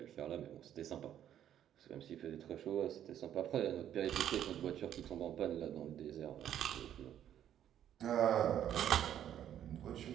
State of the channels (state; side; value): quieter; left; 10.6 dB